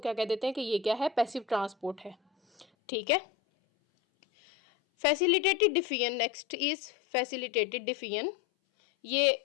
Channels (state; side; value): drops out; right; at 2.7 s